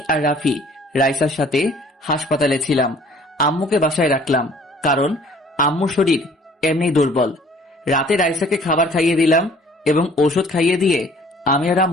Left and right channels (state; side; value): normal; both; correlation 0.54